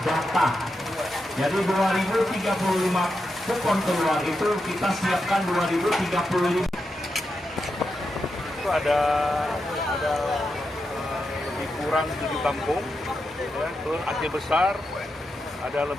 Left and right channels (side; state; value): both; normal; correlation 0.87